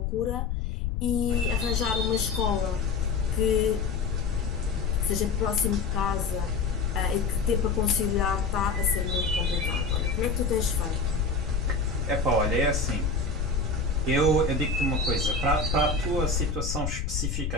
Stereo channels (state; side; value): noise; left; rumble, 1 dB below the sound